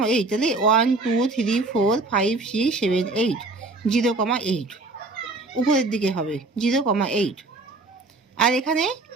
তাহলে 1 2 3 4 5 6 7 8, 0,8 উপরের দিকে হবে 0,8। আর এখানে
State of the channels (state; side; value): quieter; left; 3.3 dB